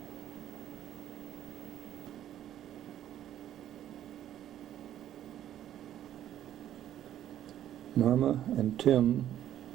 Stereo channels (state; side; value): quieter; left; 11.5 dB